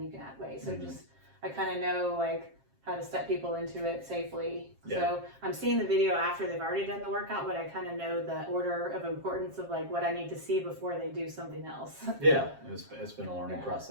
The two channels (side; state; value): left; late; 7.4 ms